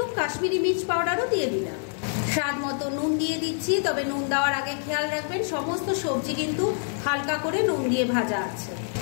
কাশ্মীরি মির্চ পাউডারও দিয়ে দিলাম। স্বাদ মতো নুন দিয়ে দিচ্ছি, তবে নুন দেওয়ার আগে খেয়াল রাখবেন সমস্ত সবজি কিন্তু হালকা করে নুন দিয়ে ভাজা আছে।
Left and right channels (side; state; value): right; silent; digital silence